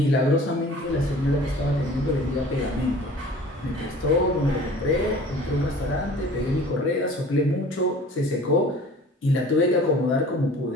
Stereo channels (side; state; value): both; normal; correlation 0.46